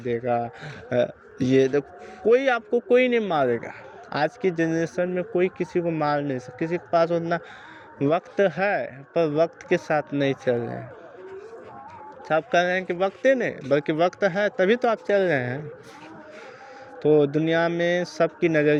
ये देखो कोई नहीं मारेगा। आज की जनरेशन में कोई किसी को मार नहीं सकता। किसी के पास उतना वक्त है पर वक्त के साथ नहीं चल रहे हैं। सब कह रहे हैं कि वक्त नहीं, बल्कि वक्त है तभी तो आप चल रहे हैं। तो दुनिया में सबकी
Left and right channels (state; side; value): identical; both; correlation 1.00